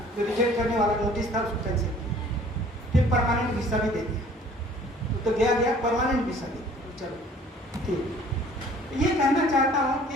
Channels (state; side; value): normal; both; correlation 0.52